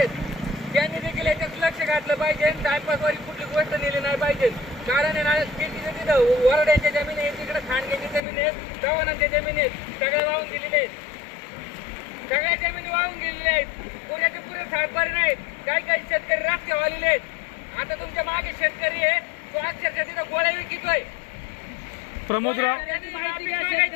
त्यांनी देखील याच्यात लक्ष घातलं पाहिजे. टायपासवारी कुठली गोष्ट नेली नाही पाहिजे. कारण आहे ना शेतीचं तिथं वरड्यांच्या जमीन आहे, तिकडे खांडग्याची जमीन आहे, चव्हाणांच्या जमीन आहेत, सगळे वाहून गेलेले आहेत. सगळ्या जमिनी वाहून गेलेल्या आहेत. पुण्याचे पुरे सातबारी नाहीत. काही शेतकरी रस्त्यावर आलेले आहेत. आता तुमच्या मागे शेतकरी आहे, तो अक्षरशः तिथं गोळ्या विकतोय. प्रमोदराव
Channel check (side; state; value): right; drops out; at 8.2 s